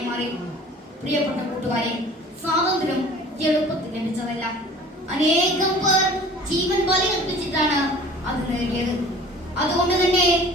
മാറി. പ്രിയപ്പെട്ട കൂട്ടുകാരെ, സ്വാതന്ത്ര്യം എളുപ്പത്തിൽ ലഭിച്ചതല്ല. അനേകം പേർ ജീവൻ ബലിയർപ്പിച്ചിട്ടാണ് അത് നേടിയത്. അതുകൊണ്ട് തന്നെ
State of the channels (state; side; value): normal; both; correlation 0.46